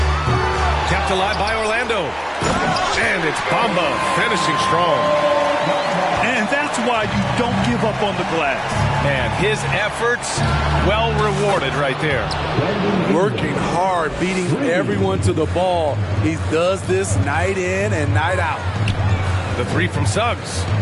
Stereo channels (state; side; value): identical; both; correlation 1.00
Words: Kept alive by Orlando. And it's Bamba finishing strong. And that's why you don't give up on the glass. Man, his efforts well rewarded right there. Working hard, beating everyone to the ball. He does this night in and night out. The three from Suggs.